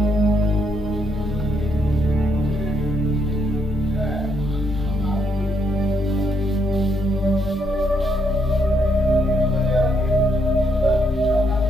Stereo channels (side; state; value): both; normal; correlation 0.75